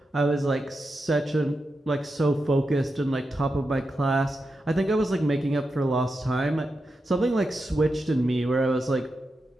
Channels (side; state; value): both; normal; correlation 0.88